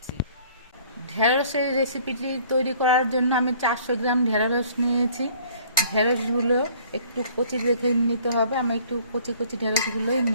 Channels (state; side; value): inverted; both; correlation -0.56